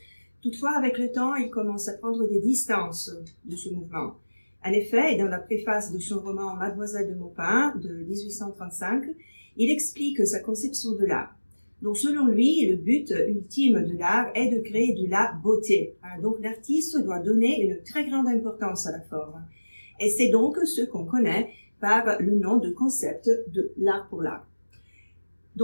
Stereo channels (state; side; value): inverted; both; correlation -1.00